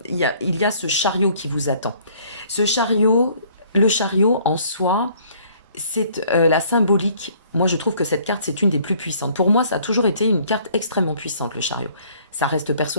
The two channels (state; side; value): inverted; both; correlation -0.59